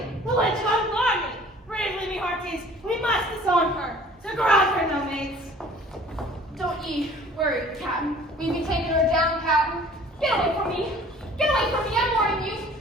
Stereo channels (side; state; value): both; normal; correlation 0.50